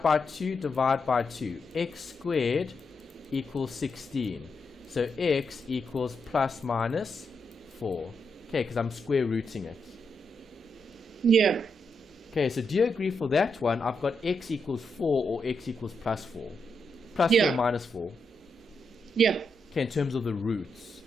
by 2, divide by 2. X squared equals 16. So x equals plus minus 4. Okay, because I'm square rooting it. Yeah. Okay, so do you agree for that one? I've got x equals 4 or x equals plus 4. Plus Yeah. 4 minus 4. Yeah. Okay, in terms of the roots.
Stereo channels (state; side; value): normal; both; correlation 0.82